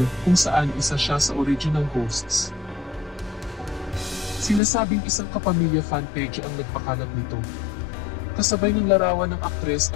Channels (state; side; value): drops out; right; at 4.6 s